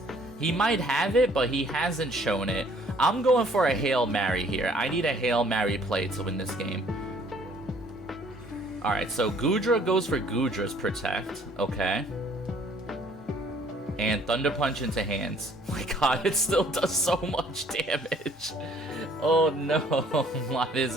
He might have it, but he hasn't shown it. I'm going for a Hail Mary here. I need a Hail Mary play to win this game. Alright, so Gudra goes for Gudra's Protect. Okay. And Thunder Punch into hands. Oh my god, it still does so much damage. Oh no, why does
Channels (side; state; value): both; normal; correlation 0.59